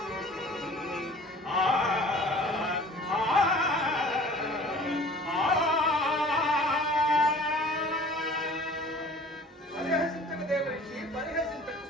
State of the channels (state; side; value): normal; both; correlation 0.47